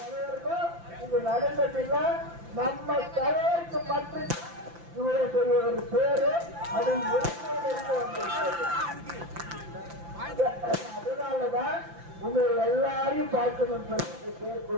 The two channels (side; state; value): left; late; 5.9 ms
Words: இது நடந்ததில்லை. நம்ம தலைவருக்கு மட்டும் இவ்வளவு பெரிய ஒரு பேரு அது அதனாலதான் உங்களை எல்லாரையும் பார்க்கணும் சொல்லி பேர்